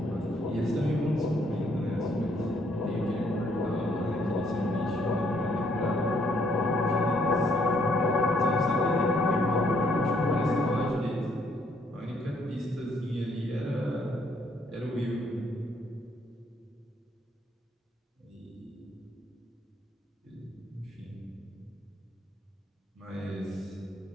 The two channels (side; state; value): both; normal; correlation 0.69